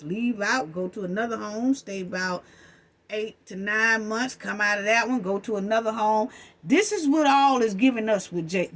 leave out, go to another home, stay about 8 to 9 months, come out of that one, go to another home. This is what all is giving us with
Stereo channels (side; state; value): both; identical; correlation 1.00